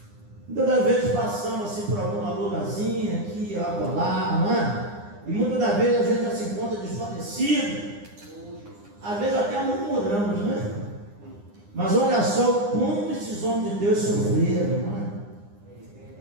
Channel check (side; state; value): left; late; 9.8 ms